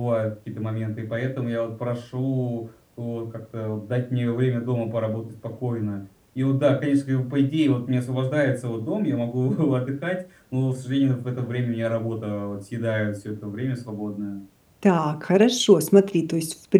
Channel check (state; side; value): identical; both; correlation 1.00